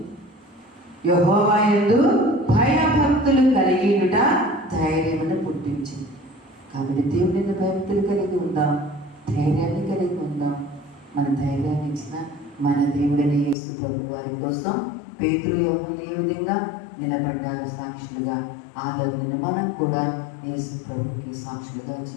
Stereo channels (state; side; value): drops out; right; at 13.6 s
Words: యెహోవా యందు భయభక్తులు కలిగి ఉండుట ధైర్యమును పుట్టించును. కాబట్టి దేవుని భయభక్తులు కలిగి ఉందాం, ధైర్యాన్ని కలిగి ఉందాం. మన ధైర్యాన్ని ఇచ్చిన మన దేవుడైన యేసు ప్రభు వారి కోసం పేతురు యోహానులు ఏ విధంగా నిలబడ్డారు సాక్షులుగా, ఆలోచన మనం కూడా యేసు ప్రభుకి సాక్షులుగా